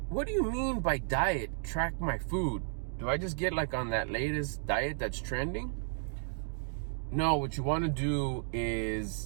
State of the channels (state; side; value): silent; left; digital silence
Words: what do you mean by diet? Track my food. Do I just get like on that latest diet that's trending? No, what you want to do